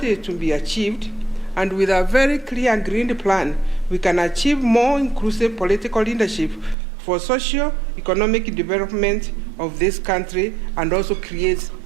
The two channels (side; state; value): left; drops out; at 6.8 s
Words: is to be achieved, and with a very clear and green plan, we can achieve more inclusive political leadership for socio-economic development of this country and also create